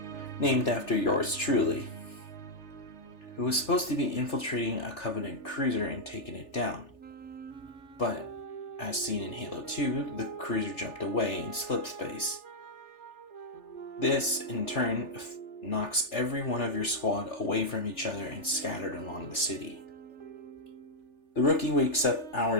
named after yours truly, who was supposed to be infiltrating a Covenant cruiser and taking it down. But, as seen in Halo 2, the cruiser jumped away in slip space. This, in turn, knocks every one of your squad away from each other and scattered along the city. The Rookie wakes up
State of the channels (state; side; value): late; right; 3.4 ms